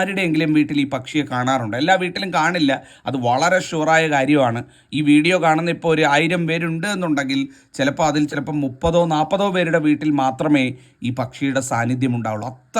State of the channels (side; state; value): both; identical; correlation 1.00